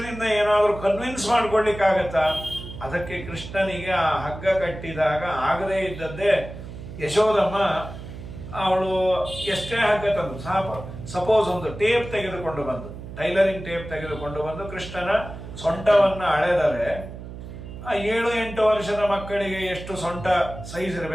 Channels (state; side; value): noise; right; hum, 12 dB below the sound